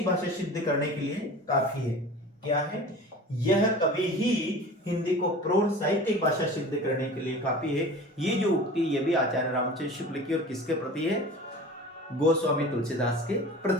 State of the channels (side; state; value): both; normal; correlation 0.38